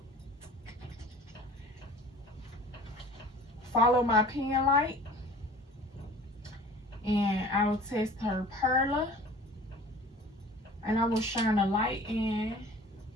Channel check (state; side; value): normal; both; correlation 0.45